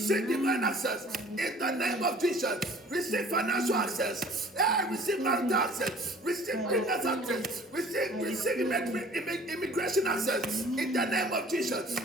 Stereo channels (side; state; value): both; normal; correlation 0.50